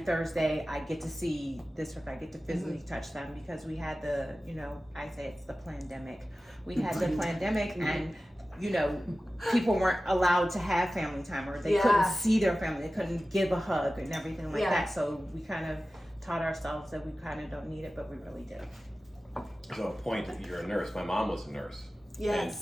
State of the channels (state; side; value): normal; both; correlation 0.95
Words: I get to see this person, I get to physically touch them, because we had the, you know, I say it's the pandemic. We had the pandemic, and, you know, people weren't allowed to have family time, or they couldn't see their family, they couldn't give a hug and everything like that. So we kind of taught ourselves that we kind of don't need it, but we really do. So a point that you're a nurse. My mom was a nurse.